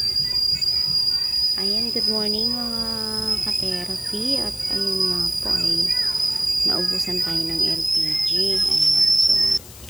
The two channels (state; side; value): noise; left; hiss, 18 dB below the sound